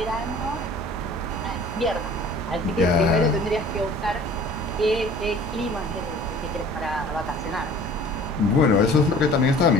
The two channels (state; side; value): normal; both; correlation 0.47